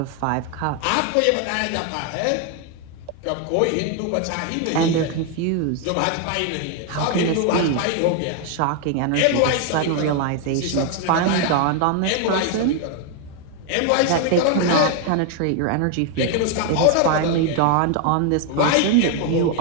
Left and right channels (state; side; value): different; both; correlation 0.01